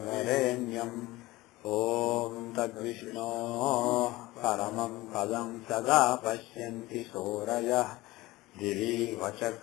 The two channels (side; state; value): right; quieter; 19.4 dB